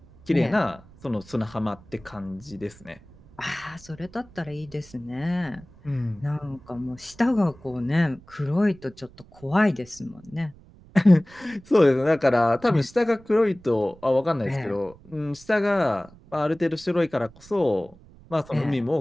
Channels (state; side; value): noise; right; rumble, 24 dB below the sound